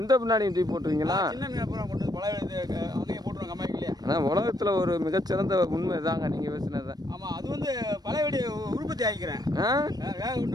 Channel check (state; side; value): late; left; 0.19 ms